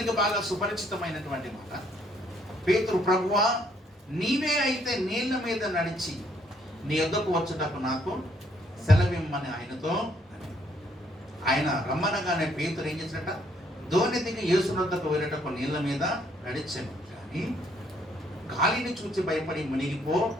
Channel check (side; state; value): both; normal; correlation 0.68